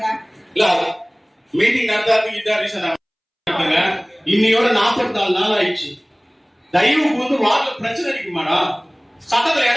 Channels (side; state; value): both; identical; correlation 1.00